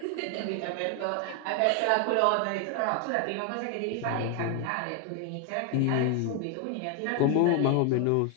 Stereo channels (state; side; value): different; both; correlation 0.01